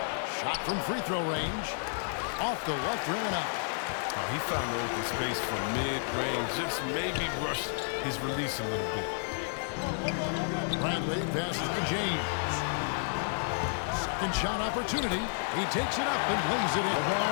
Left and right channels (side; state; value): right; silent; digital silence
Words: Shot from free throw range. Off the left rim and out. Oh, he found the open space from mid-range. Just maybe rushed his release a little bit. Bradley passes to James. Second shot opportunity. He takes it up and lays it in.